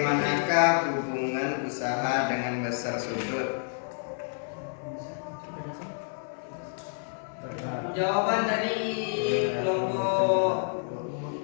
hubungan usaha dengan besar sudut? Jawaban dari kelompok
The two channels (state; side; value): silent; right; digital silence